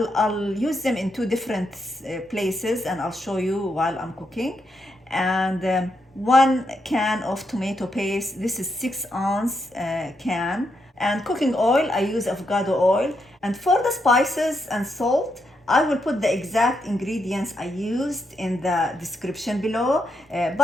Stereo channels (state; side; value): normal; both; correlation 0.81